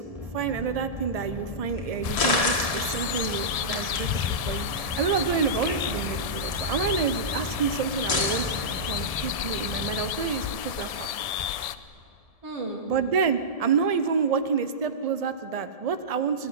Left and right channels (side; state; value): left; late; 1.7 ms